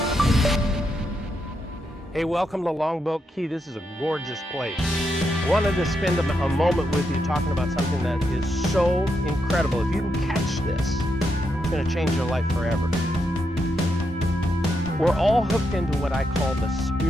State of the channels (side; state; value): both; normal; correlation 0.82